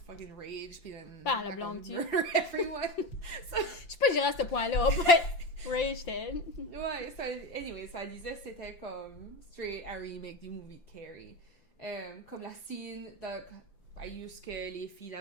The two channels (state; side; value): late; right; 5.8 ms